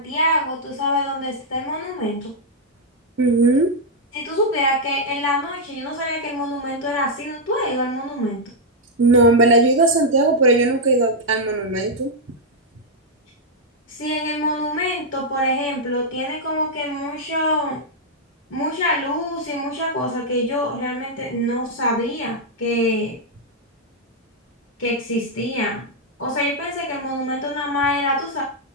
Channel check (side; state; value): both; normal; correlation -0.04